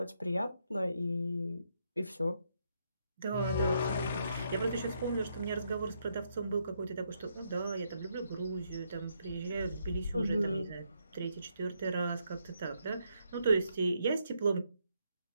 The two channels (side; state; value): both; inverted; correlation -0.77